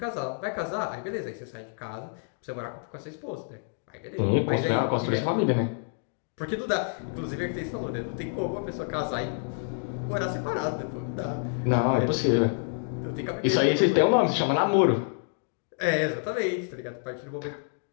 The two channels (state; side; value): silent; right; digital silence